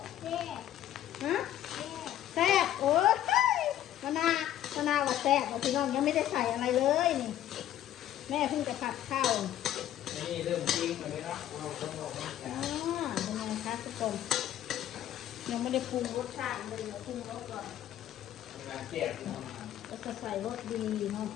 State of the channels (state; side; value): quieter; right; 12.1 dB